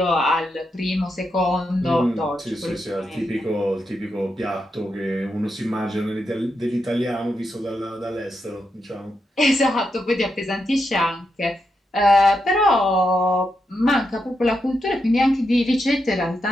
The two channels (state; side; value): normal; both; correlation 0.84